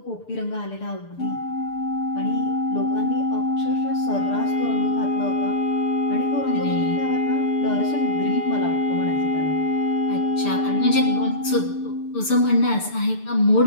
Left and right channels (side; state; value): right; late; 6.8 ms